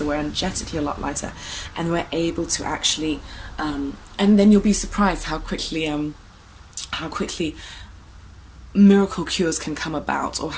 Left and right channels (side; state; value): both; identical; correlation 1.00